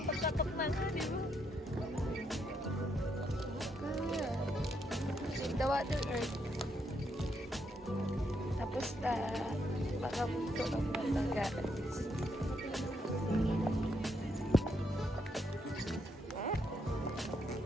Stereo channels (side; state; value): both; normal; correlation 0.76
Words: na nga, di ba? The Water Earth. Tapos na, baka ito ang matanggaan.